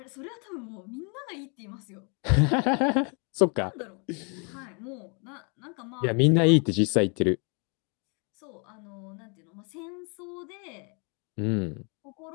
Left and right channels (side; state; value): right; quieter; 35.4 dB